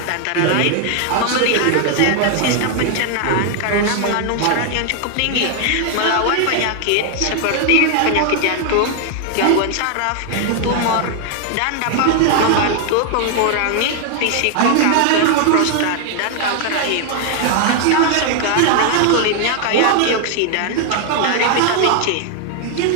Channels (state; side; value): different; both; correlation 0.00